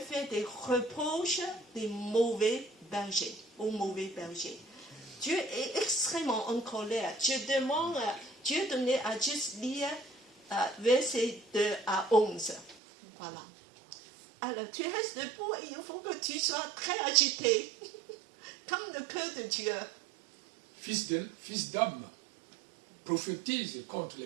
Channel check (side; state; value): left; drops out; at 12.8 s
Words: des reproches des mauvais bergers, aux mauvais bergers. Dieu est extrêmement en colère. Dieu donnait à juste lire versets 2 à 11. Voilà. Alors, tu restes debout et il faut que tu sois très agité, comme le cœur de Dieu. Fils d'homme, prophétise contre